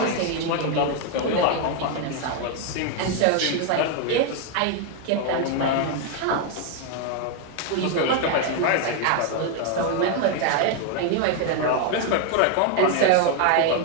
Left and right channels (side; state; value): both; different; correlation 0.01